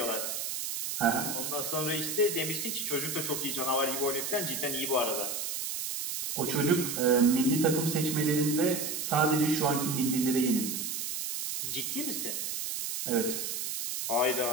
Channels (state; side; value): noise; right; hiss, 3 dB below the sound